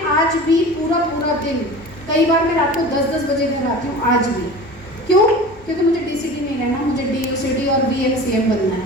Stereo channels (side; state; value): both; normal; correlation 0.37